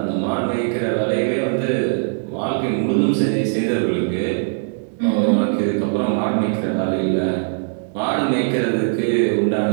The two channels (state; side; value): silent; left; digital silence